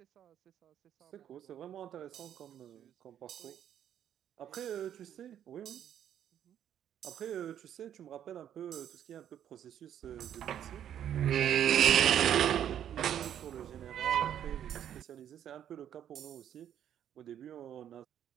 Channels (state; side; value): quieter; left; 10.1 dB